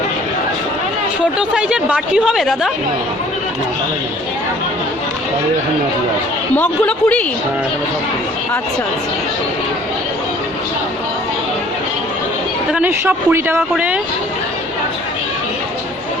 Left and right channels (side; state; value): both; normal; correlation 0.54